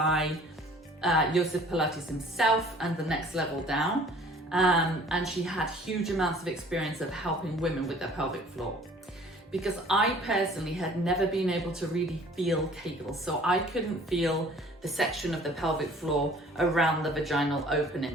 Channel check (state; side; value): normal; both; correlation 0.52